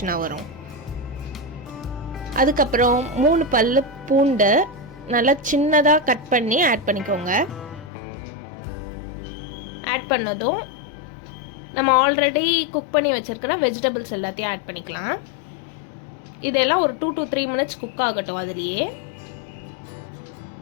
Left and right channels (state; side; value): drops out; right; at 7.9 s